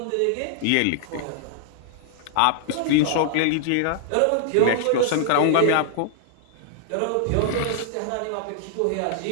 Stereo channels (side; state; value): both; different; correlation -0.01